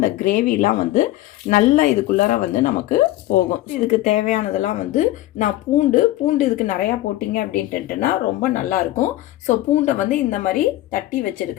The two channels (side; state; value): right; quieter; 16.0 dB